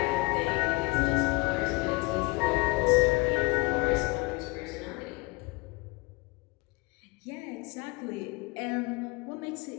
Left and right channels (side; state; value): right; quieter; 26.1 dB